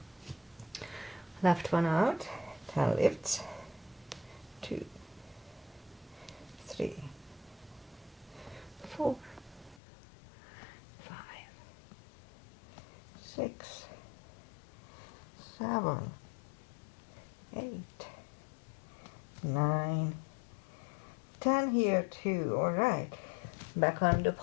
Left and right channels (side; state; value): right; drops out; at 9.8 s